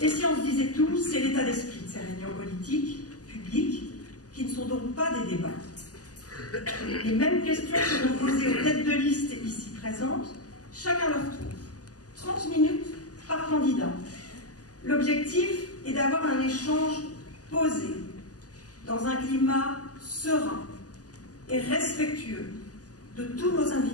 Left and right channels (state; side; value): late; right; 0.67 ms